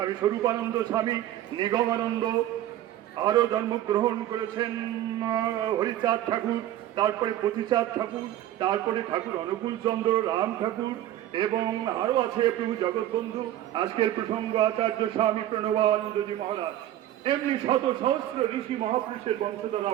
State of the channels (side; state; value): left; quieter; 13.0 dB